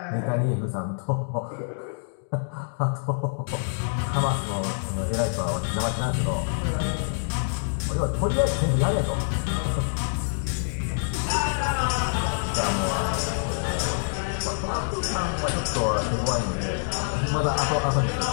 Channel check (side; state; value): right; silent; digital silence